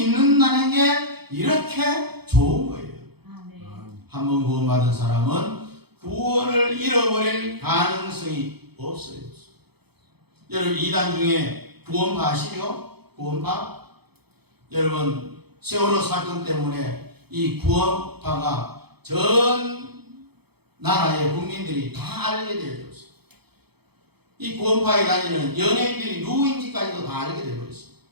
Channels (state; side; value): late; left; 0.97 ms